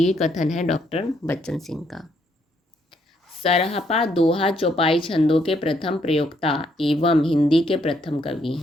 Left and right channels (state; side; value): normal; both; correlation 0.72